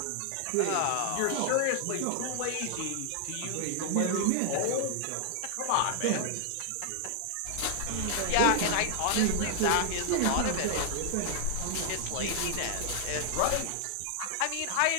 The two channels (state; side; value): different; both; correlation 0.00